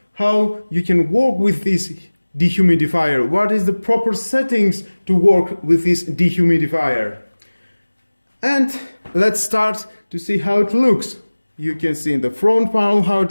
how you can work with this dehumidifier. What is the proper settings to work with this dehumidifier? And let's start to see how it looks. You can see in the front panel how it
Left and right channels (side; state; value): both; inverted; correlation -1.00